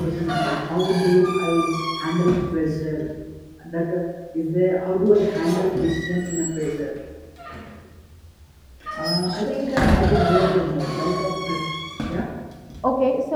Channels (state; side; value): identical; both; correlation 1.00